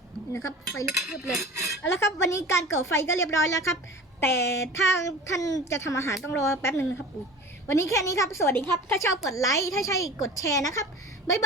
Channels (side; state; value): both; normal; correlation 0.38